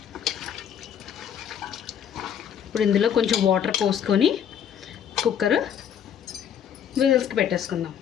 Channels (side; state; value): right; quieter; 8.7 dB